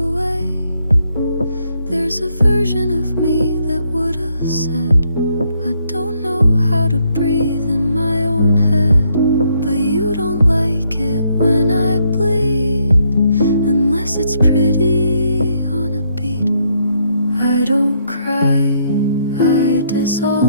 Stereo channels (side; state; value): both; inverted; correlation -0.73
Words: There's a version of me that would have said, I don't know how to breathe in my own head. But you don't like it when I bleed, unless it's pretty on a beat. I don't cry, I